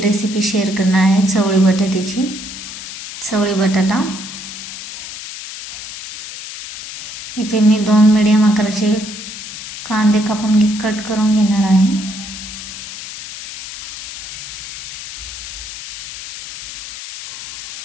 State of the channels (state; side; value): noise; left; hiss, 11 dB below the sound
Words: शेअर करणार आहे, चवळी बटाट्याची. चवळी बटाटा इथे मी 2 मीडियम आकाराचे कांदे कापून कट करून घेणार आहे.